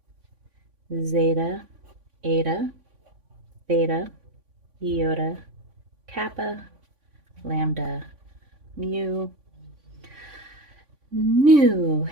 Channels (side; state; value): left; late; 3.5 ms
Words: zeta, eta, theta, iota, kappa, lambda, mu, nu,